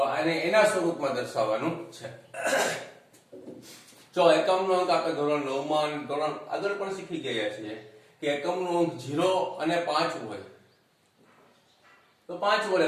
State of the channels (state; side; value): identical; both; correlation 1.00